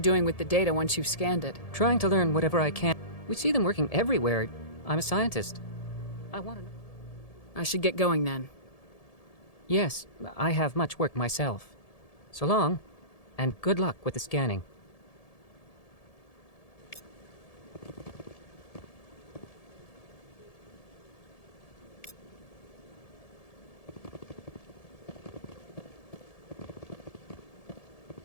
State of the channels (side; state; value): right; late; 1.7 ms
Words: with the data once you've scanned it? Trying to learn whatever I can. We see them working everywhere. I'm a scientist. I want to know. I should get going then. Yes, I have much work myself. So long, and good luck with the scanning.